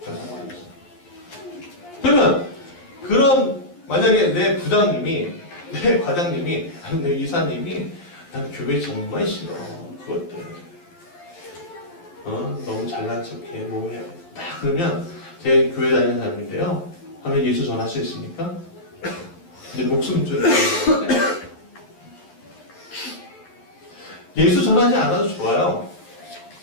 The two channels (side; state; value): right; late; 11 ms